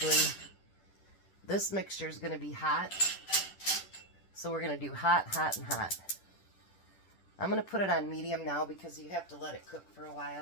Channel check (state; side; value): late; right; 10 ms